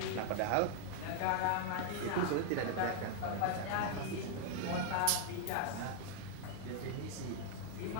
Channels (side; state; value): both; different; correlation 0.00